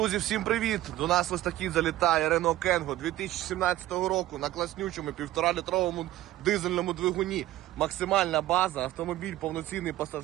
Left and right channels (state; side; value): quieter; left; 15.1 dB